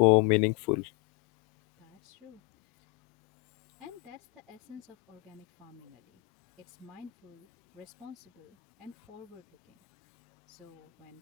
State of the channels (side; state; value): right; quieter; 24.4 dB